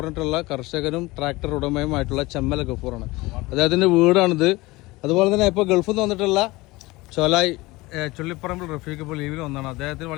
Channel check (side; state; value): right; quieter; 21.3 dB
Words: കർഷകനും ട്രാക്ടർ ഉടമയുമായിട്ടുള്ള ചെമ്മല ഗഫൂറാണ്. അദ്ദേഹത്തിൻ്റെ വീടാണിത്. അതുപോലെ തന്നെ ഇപ്പോൾ ഗൾഫിൽ നിന്ന് വന്നിട്ടുള്ള ചോലായി ചുള്ളിപ്പറമ്പിൽ റഫീഖ് ഇപ്പോൾ ലീവിൽ വന്നതാണ്. അദ്ദേഹത്തിന്